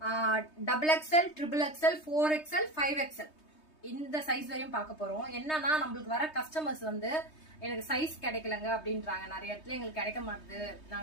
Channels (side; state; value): right; late; 3.2 ms